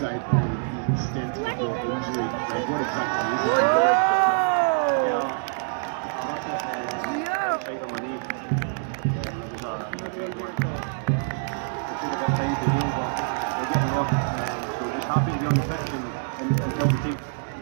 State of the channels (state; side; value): silent; left; digital silence